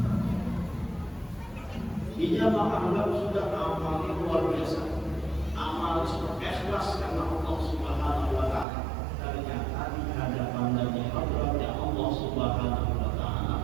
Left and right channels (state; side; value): drops out; left; at 8.7 s